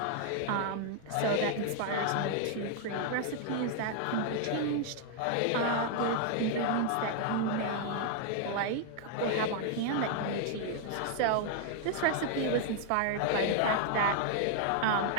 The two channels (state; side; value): different; both; correlation 0.00